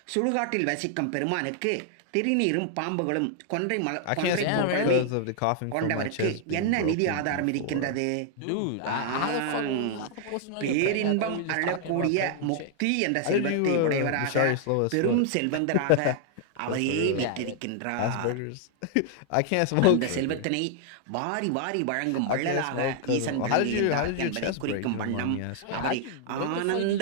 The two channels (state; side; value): different; both; correlation 0.00